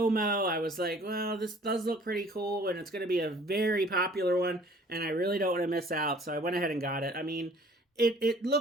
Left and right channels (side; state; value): both; normal; correlation 0.53